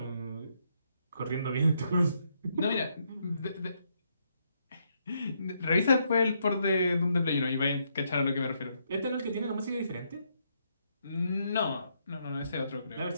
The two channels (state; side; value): inverted; both; correlation -0.76